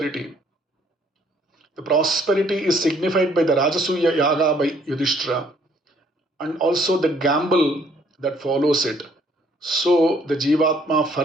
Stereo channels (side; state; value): both; normal; correlation 0.64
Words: The prosperity is signified by the Rajasuya Yaga by Yudhishthira and also the gamble that follows it. So the Jivatma